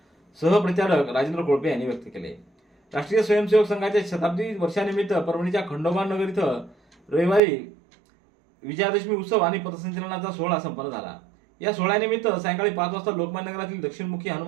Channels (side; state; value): left; drops out; at 7.4 s